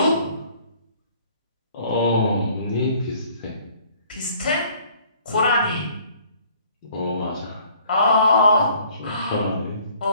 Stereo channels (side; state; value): both; inverted; correlation -0.57